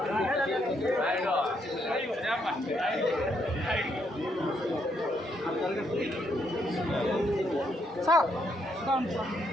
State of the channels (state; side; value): normal; both; correlation 0.75